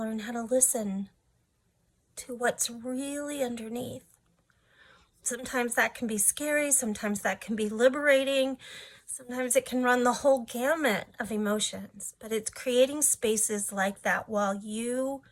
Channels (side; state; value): both; identical; correlation 1.00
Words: how to listen to what's really underneath. Sometimes that can be scary, sometimes that can be liberating, sometimes it can run the whole gamut of emotions, but it's creating spaces like that while you